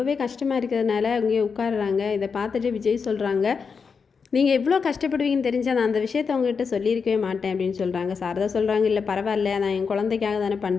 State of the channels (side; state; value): right; quieter; 5.6 dB